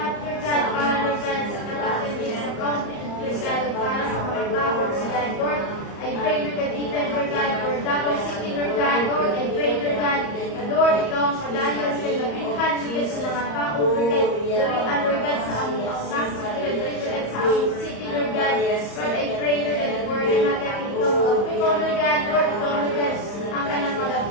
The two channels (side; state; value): right; late; 34 ms